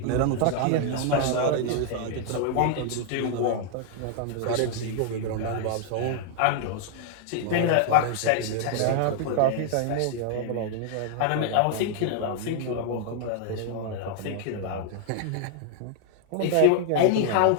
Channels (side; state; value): both; different; correlation 0.00